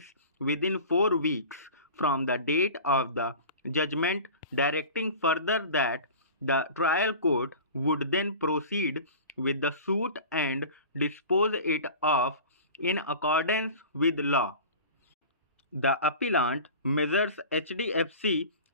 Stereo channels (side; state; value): both; inverted; correlation -0.37